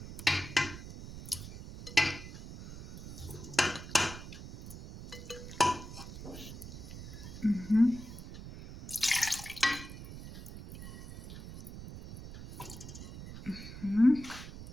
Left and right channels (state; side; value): noise; right; rumble, 12 dB below the sound